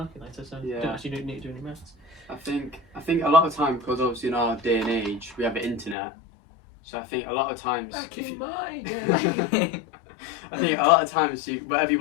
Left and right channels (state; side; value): drops out; right; at 6.0 s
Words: so you don't actually need to do any maths. I think a lot of time because obviously in our day and age we have the internet, so I think a lot of times Back if in you, my day. I think a lot of times whatever you